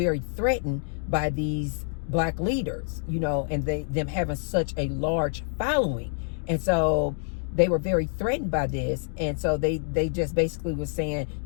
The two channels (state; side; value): silent; right; digital silence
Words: threatened by these Black leaders, and them having such a large following. And so they were very threatened by this. And so they just basically was saying,